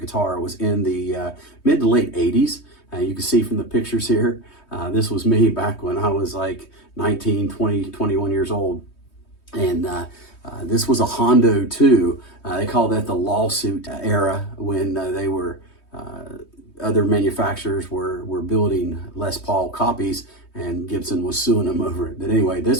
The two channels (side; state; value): right; late; 3.2 ms